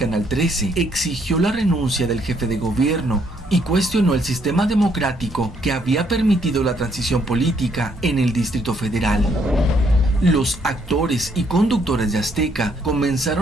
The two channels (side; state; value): both; normal; correlation 0.70